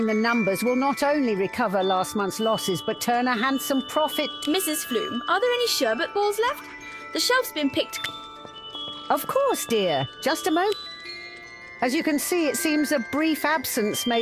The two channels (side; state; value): both; identical; correlation 1.00